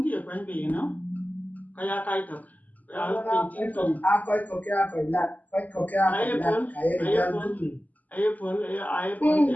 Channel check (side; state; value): right; late; 0.079 ms